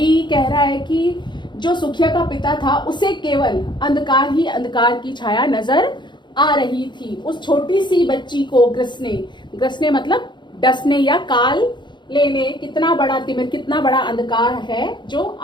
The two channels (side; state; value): right; late; 0.22 ms